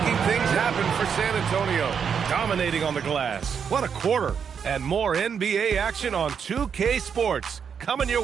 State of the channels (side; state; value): left; quieter; 7.0 dB